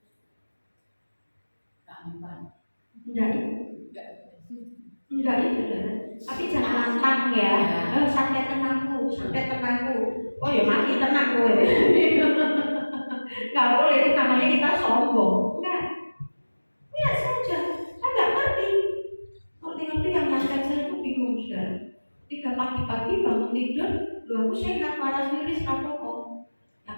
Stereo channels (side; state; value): both; inverted; correlation -1.00